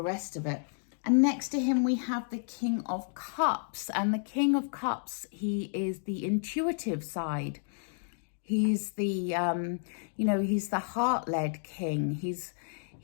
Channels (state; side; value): silent; right; digital silence